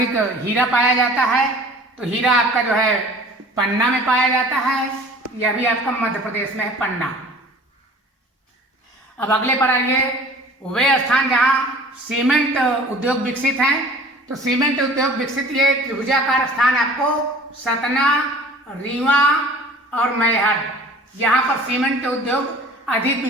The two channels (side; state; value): both; normal; correlation 0.47